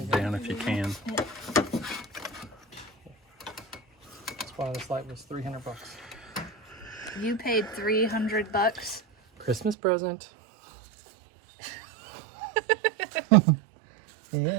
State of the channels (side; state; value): left; drops out; at 9.8 s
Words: down if you can. Yeah. That's why this light was $300. You paid $300. Christmas present.